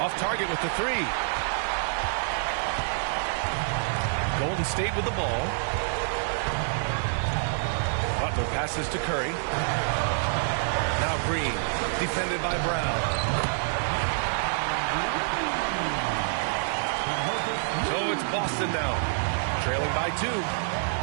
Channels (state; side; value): silent; left; digital silence